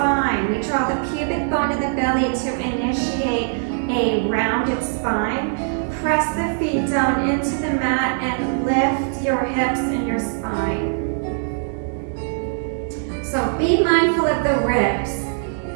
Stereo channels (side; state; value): left; silent; digital silence